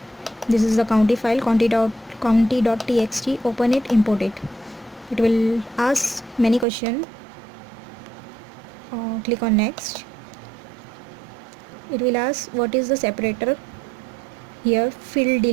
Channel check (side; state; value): left; drops out; at 6.7 s